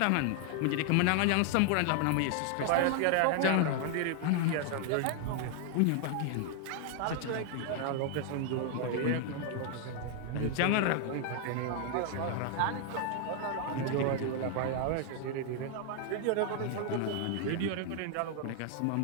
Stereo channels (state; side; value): different; both; correlation 0.00